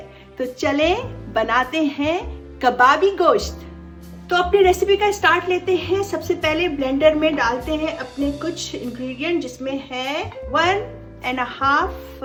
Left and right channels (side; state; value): both; identical; correlation 1.00